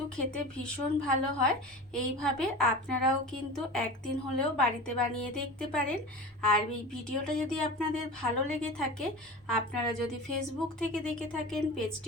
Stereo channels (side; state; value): both; normal; correlation 0.32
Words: খেতে ভীষণ ভালো হয়। এইভাবে আপনারাও কিন্তু একদিন হলেও বাড়িতে বানিয়ে দেখতে পারেন। আর এই ভিডিওটা যদি আপনাদের ভালো লেগে থাকে, আপনারা যদি ফেসবুক থেকে দেখে থাকেন